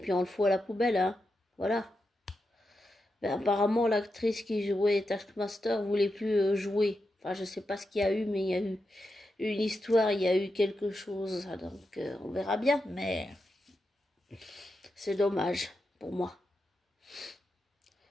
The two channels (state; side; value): normal; both; correlation 0.87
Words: on le fout à la poubelle, hein. Voilà. Ben, apparemment, l'actrice qui jouait Taskmaster voulait plus jouer. Enfin, je sais pas ce qu'il y a eu, mais il y a eu une histoire, il y a eu quelque chose. Donc, on verra bien, mais c'est dommage pour moi.